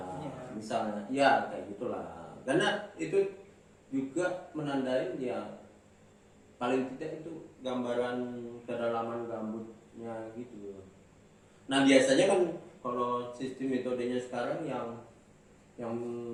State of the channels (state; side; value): identical; both; correlation 1.00